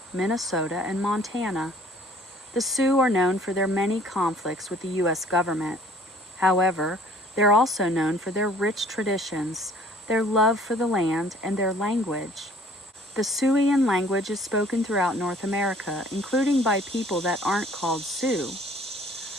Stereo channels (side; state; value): both; normal; correlation 0.54